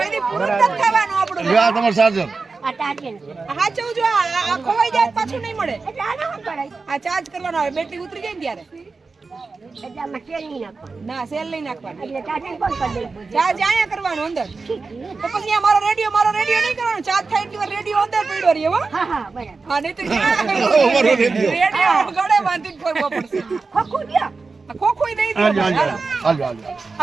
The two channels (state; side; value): quieter; left; 4.2 dB